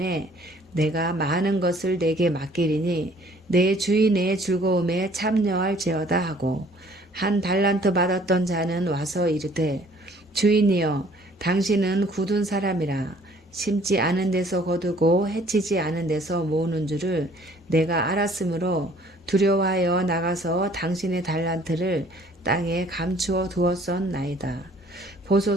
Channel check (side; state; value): both; normal; correlation 0.57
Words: 내가 많은 것을 내게 맡기리니 내 주인의 즐거움에 참여할지어다 하고 1달란트 받았던 자는 와서 이르되 주인이여 당신은 굳은 사람이라 심지 않은 데서 거두고 해치지 않은 데서 모으는 줄을 내가 알았으므로 두려워하여 나가서 당신의 달란트를 땅에 감추어 두었었나이다.